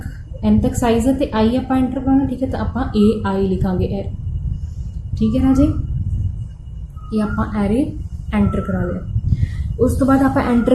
तक साइज है, तो आई आप एंटर करना, ठीक है, तो आप ए आई लिखांगे एरे, ठीक है राजे, ये आप एरे एंटर करा लिया। उस तो बाद आप एंटर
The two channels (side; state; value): both; identical; correlation 1.00